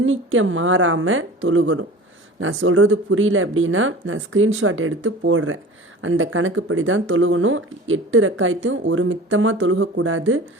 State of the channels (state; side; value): normal; both; correlation 0.39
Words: மாறாமல் தொழுகணும். நான் சொல்கிறது புரியல அப்படின்னா நான் ஸ்க்ரீன்ஷாட் எடுத்து போடுறேன். அந்த கணக்குப்படி தான் தொழுகணும். 8 ரக்காயத்தையும் ஒரு மித்தமாக தொழுகக்கூடாது.